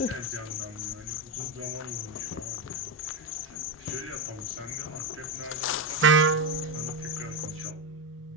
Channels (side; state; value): both; normal; correlation 0.12